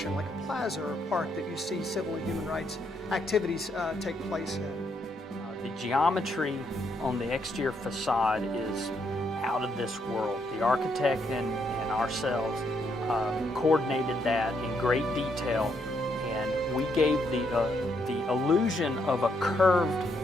like a plaza or a park that you see civil and human rights activities take place in. The geometry on the exterior facade is out of this world. The architect and ourselves coordinated that in great detail, and we gave the illusion of a curved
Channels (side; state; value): both; normal; correlation 0.75